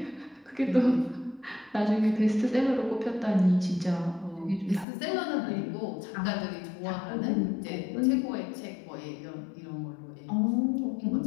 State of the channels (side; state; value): right; drops out; at 4.9 s